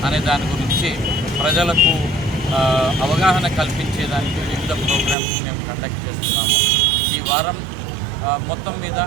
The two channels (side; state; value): left; drops out; at 5.2 s